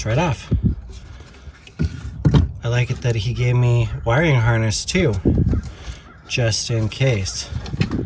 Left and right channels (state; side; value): identical; both; correlation 1.00